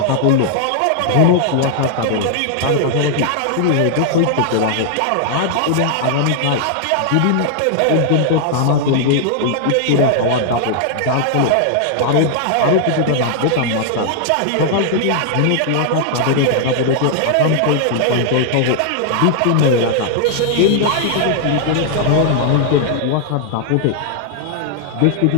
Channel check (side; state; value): both; different; correlation 0.00